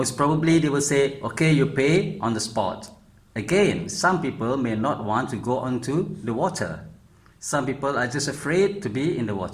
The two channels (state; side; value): identical; both; correlation 1.00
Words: probably they will say, okay, you pay on the spot. Again, some people may not want to go onto the water. Some people are just afraid to be in the